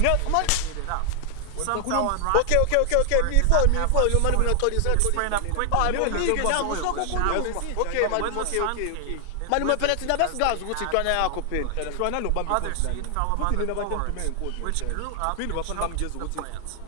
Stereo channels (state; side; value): different; both; correlation 0.00